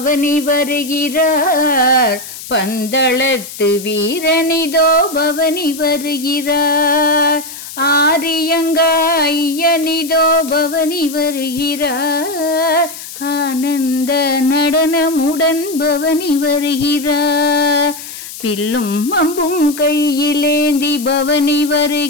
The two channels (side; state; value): left; noise; hiss, 12 dB below the sound